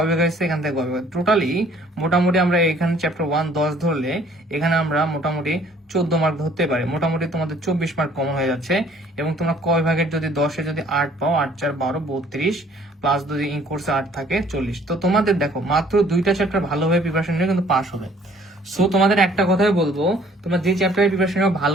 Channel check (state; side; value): normal; both; correlation 0.58